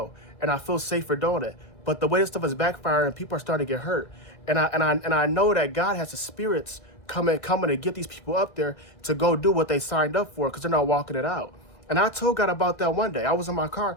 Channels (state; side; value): late; right; 1.8 ms